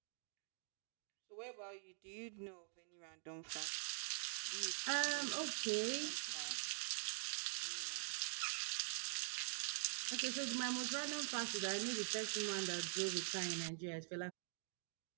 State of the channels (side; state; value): left; silent; digital silence